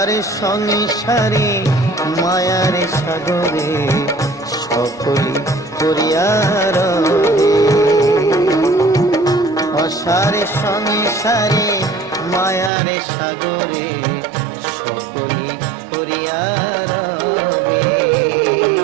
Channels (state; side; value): drops out; left; at 12.7 s